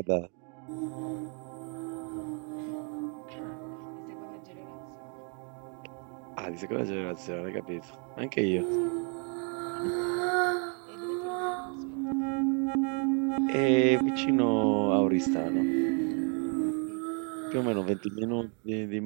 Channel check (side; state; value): left; quieter; 38.9 dB